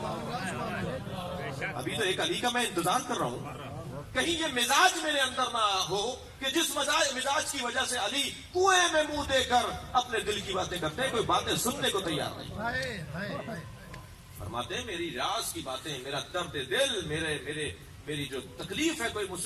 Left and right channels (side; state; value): both; identical; correlation 1.00